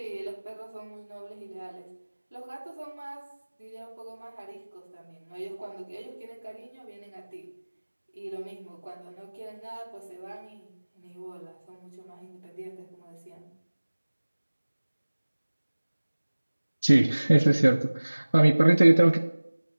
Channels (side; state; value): both; inverted; correlation -1.00